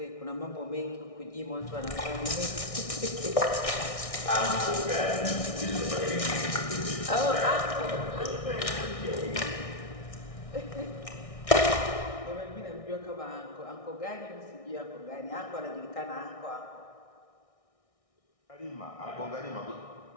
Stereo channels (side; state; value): right; late; 1.6 ms